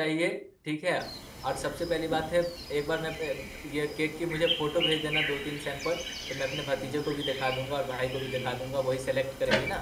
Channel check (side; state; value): both; identical; correlation 1.00